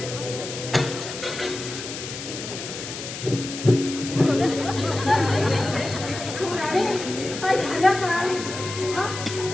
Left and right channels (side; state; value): left; noise; hiss, 9 dB below the sound